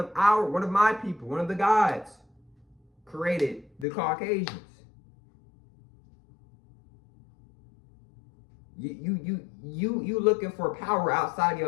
my people, one of the gods created the Caucasians. You looking for power outside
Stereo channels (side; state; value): right; drops out; at 3.9 s